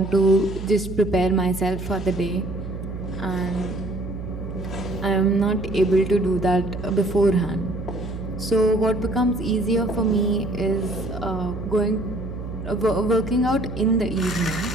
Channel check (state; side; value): noise; right; hum, 8 dB below the sound